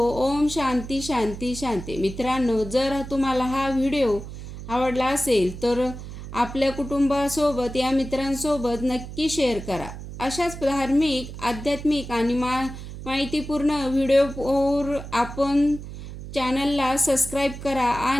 ओम शांती शांती शांती. मित्रांनो, जर तुम्हाला हा व्हिडिओ आवडला असेल तर आपल्या कुटुंबासोबत, या मित्रांसोबत नक्की शेअर करा. अशाच धार्मिक, आध्यात्मिक आणि माहितीपूर्ण व्हिडिओवर आपण चॅनलला सबस्क्राईब करा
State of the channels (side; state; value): right; noise; hum, 11 dB below the sound